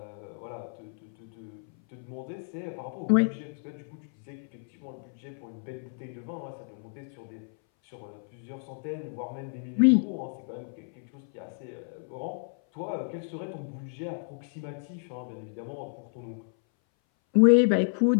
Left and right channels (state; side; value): silent; right; 57 dB below the other